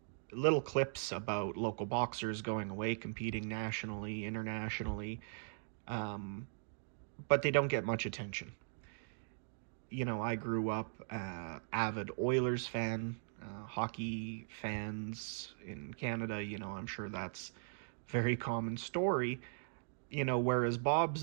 Little clips about local boxers going away, competing nationally, internationally, but they don't get much attention. You know, I grew up avid Oilers fan, hockey fans in Canada. You know, I'm sure that's a very common story. You know, whereas Bob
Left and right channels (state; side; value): silent; left; digital silence